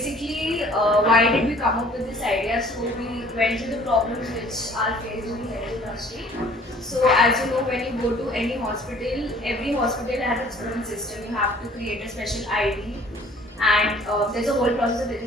why did we come up with this idea? So we went through the problems which are faced in the health industry. So as you know, when you go to any hospital, every hospital has its own system. You have to create a special ID, and there's a whole process of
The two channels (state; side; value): normal; both; correlation 0.54